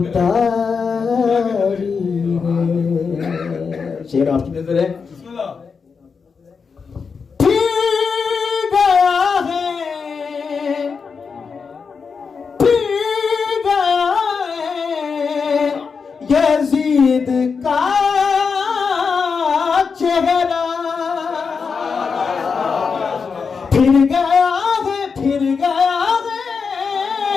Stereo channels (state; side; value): quieter; right; 5.5 dB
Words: ہے. شعر آپ کی نظر ہے. یزید کا چہرہ پھر گیا ہے